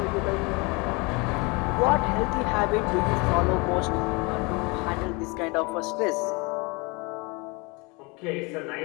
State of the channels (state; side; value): quieter; right; 27.8 dB